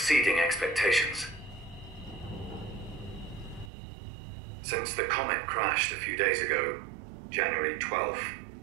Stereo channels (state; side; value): drops out; left; at 3.7 s